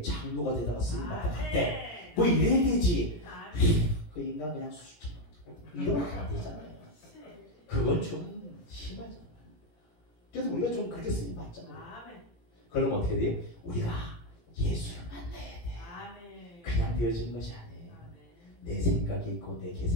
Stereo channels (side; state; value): right; late; 17 ms